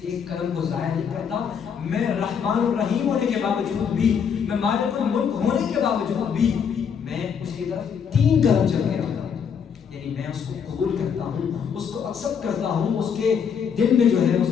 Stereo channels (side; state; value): right; quieter; 7.1 dB